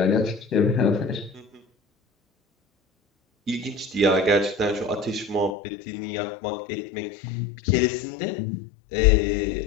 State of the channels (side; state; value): right; drops out; at 5.6 s